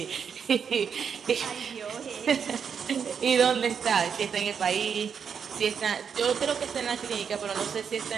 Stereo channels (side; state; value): left; quieter; 6.9 dB